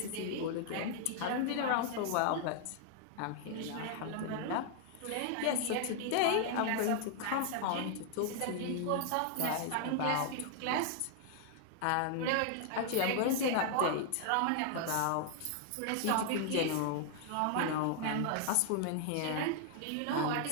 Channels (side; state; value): both; different; correlation 0.00